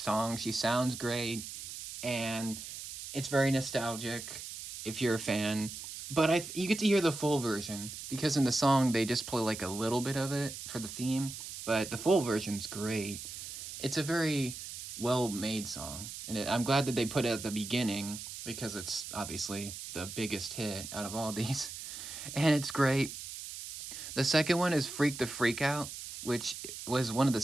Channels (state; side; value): noise; right; hiss, 9 dB below the sound